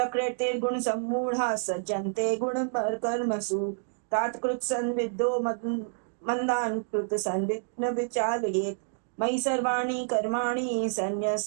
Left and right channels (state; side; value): silent; left; digital silence